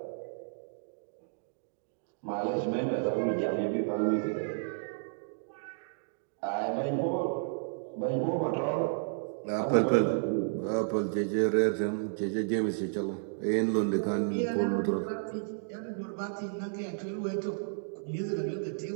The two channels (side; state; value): left; silent; digital silence